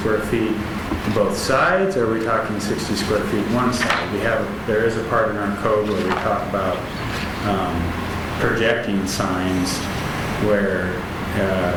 feet both sides, or are we talking 60 square feet one side? There is a part in our code where we talk about projecting signs where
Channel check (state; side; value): identical; both; correlation 1.00